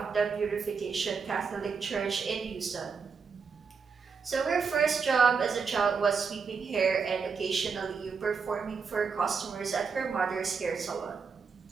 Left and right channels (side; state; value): left; quieter; 5.5 dB